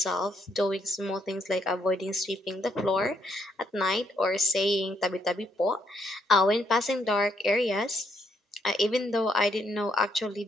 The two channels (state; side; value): normal; both; correlation 0.74